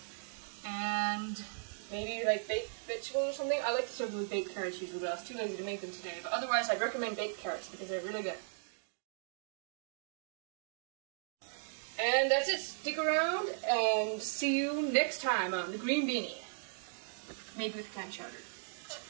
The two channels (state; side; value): silent; left; digital silence